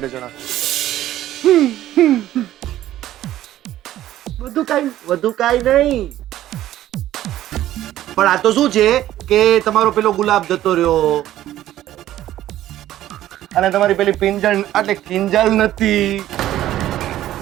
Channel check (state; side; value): quieter; left; 13.4 dB